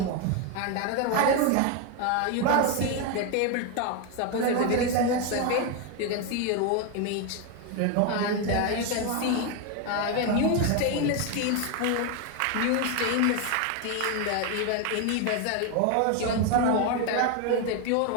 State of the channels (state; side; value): different; both; correlation 0.01